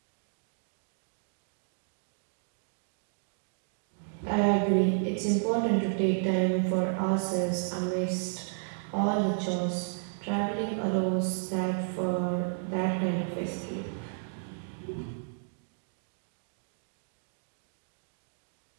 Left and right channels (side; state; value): left; silent; digital silence